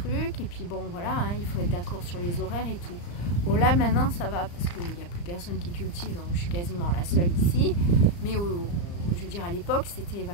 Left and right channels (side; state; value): right; late; 35 ms